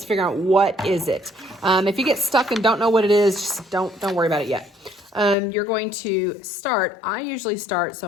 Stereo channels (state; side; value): drops out; right; at 5.4 s